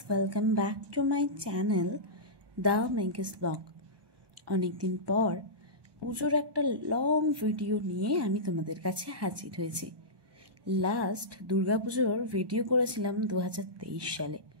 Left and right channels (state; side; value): late; left; 1.1 ms